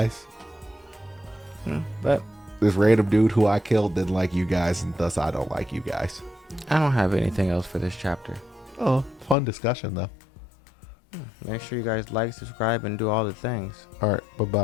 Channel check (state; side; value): drops out; right; at 9.3 s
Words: But This random dude who I killed didn't like you guys, and thus I don't like you guys. I don't have anything else for this chapter. Oh, fun discussion though. Make sure you guys like, subscribe, and do all the things. All right,